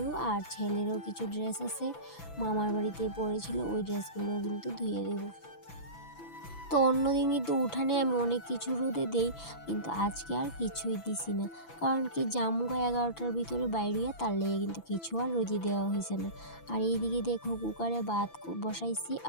আর ছেলেরও কিছু ড্রেস আছে মামার বাড়িতে পড়েছিল, ওই ড্রেসগুলোও কিন্তু ধুয়ে দেবো। তো অন্যদিন কিন্তু উঠানে আমি অনেক কিছু রোদে দেই, কিন্তু আজকে আর কিছুই দিছি না। কারণ কি, জামুগা 11টার ভিতরে বাইরিয়া, তার লেগে কিন্তু কিছু আর রোদে দেওয়া হয়েছে না। আর এইদিকে দেখো, কুকারে ভাত বসাইছি,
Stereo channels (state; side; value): late; right; 6.0 ms